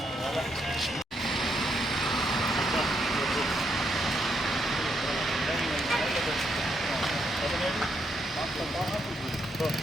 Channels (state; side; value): normal; both; correlation 0.78